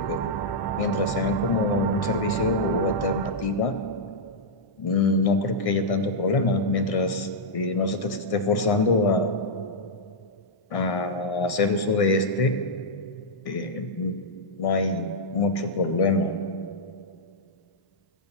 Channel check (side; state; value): right; late; 1.6 ms